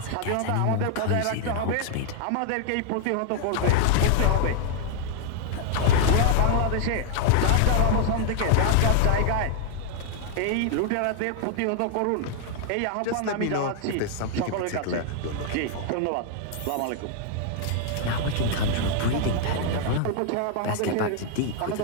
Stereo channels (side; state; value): both; different; correlation 0.00